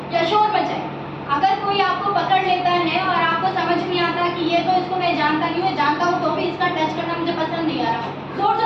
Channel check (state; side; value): identical; both; correlation 1.00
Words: या शोर मचाए। अगर कोई आपको पकड़ लेता है और आपको समझ नहीं आता कि ये तो इसको मैं जानता नहीं हूँ, जानता हूँ तो भी इसका टच करना मुझे पसंद नहीं आ रहा, जोर